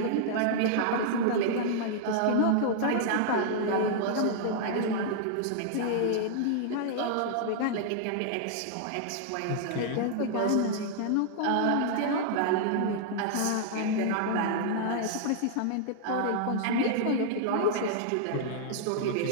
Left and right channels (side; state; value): both; different; correlation -0.01